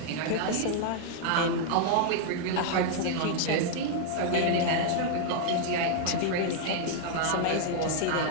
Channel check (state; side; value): different; both; correlation -0.01